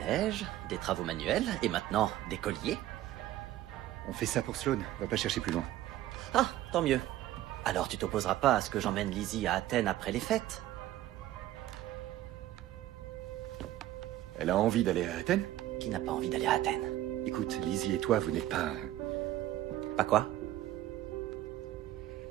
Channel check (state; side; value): quieter; left; 14.0 dB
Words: neige, des travaux manuels, et maintenant, des colliers. On fait ça pour Sloane, va pas chercher plus loin. Ah, tant mieux. Alors tu t'opposeras pas à ce que j'emmène Lizzie à Athènes après les fêtes? Elle a envie d'aller à Athènes? Qui n'a pas envie d'aller à Athènes? Écoute, Lizzie et toi, vous n'êtes pas... Pas quoi?